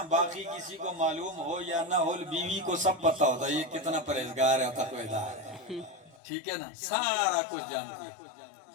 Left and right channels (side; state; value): right; drops out; at 6.2 s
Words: باقی کسی کو معلوم ہو یا نہ ہو، بیوی کو سب پتا ہوتا ہے یہ کتنا پرہیزگار ہے، تقویدار ہے، ٹھیک ہے نا، سارا کچھ جانتی ہے۔